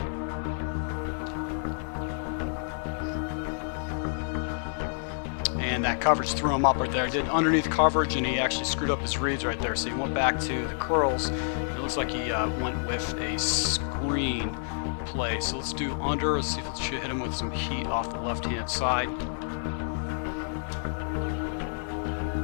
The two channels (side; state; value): right; silent; digital silence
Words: And that coverage threw him up right there. Did underneath coverage, and he actually screwed up his reads right there. So he went back to the curls. It looks like he went with a screen play. So let's do under. Let's see if it should hit him with some heat off the left-hand side.